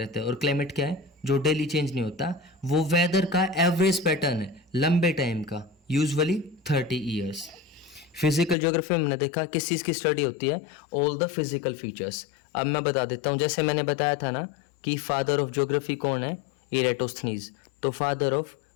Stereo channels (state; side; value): drops out; right; at 8.6 s